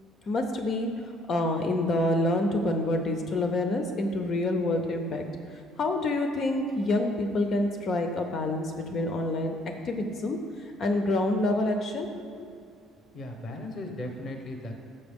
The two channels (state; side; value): normal; both; correlation 0.64